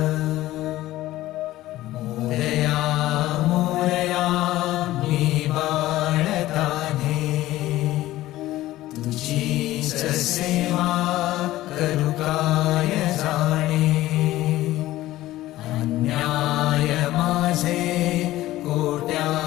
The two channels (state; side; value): quieter; right; 15.9 dB